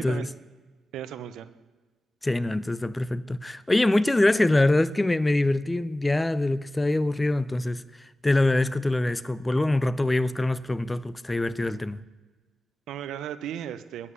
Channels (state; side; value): normal; both; correlation 0.97